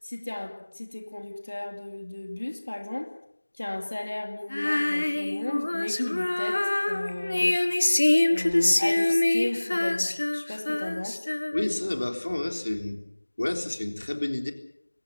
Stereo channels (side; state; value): both; inverted; correlation -1.00